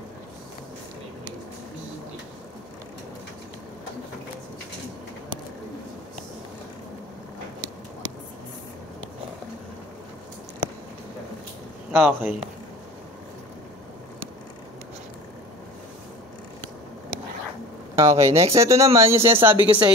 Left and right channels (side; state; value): both; normal; correlation 0.40